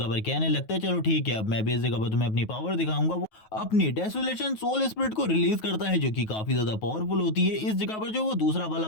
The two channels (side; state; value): right; late; 9.3 ms